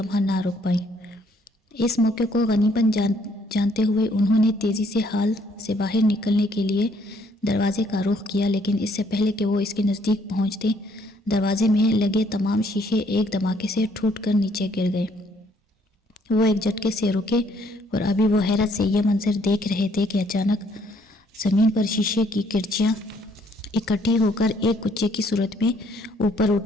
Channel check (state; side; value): normal; both; correlation 0.66